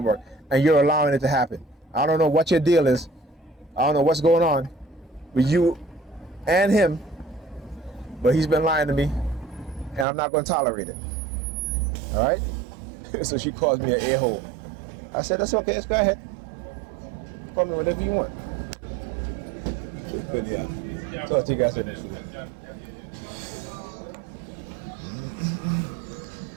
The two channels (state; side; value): drops out; left; at 10.1 s